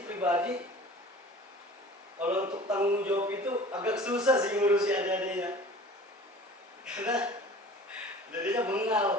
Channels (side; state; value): both; normal; correlation 0.43